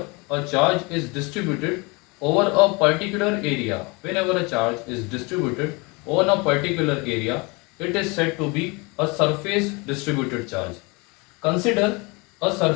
a charge is distributed over a particular area, whenever a charge is distributed over a particular area, it is said to be a surface distributed charge. Consider a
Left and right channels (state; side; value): quieter; right; 27.8 dB